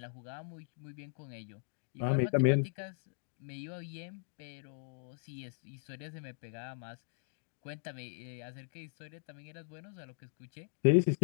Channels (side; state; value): right; silent; digital silence